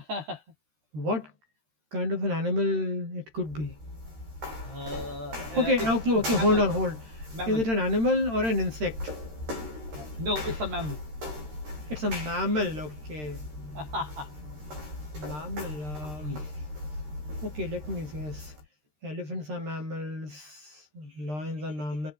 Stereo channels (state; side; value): late; left; 13 ms